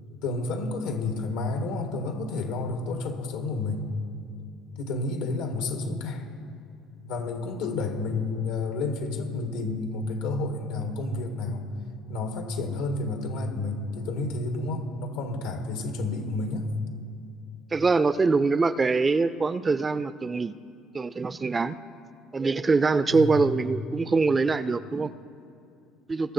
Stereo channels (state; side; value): normal; both; correlation 0.74